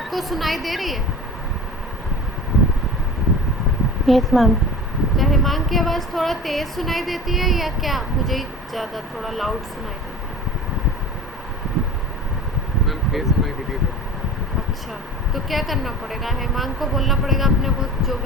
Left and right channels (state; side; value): normal; both; correlation 0.36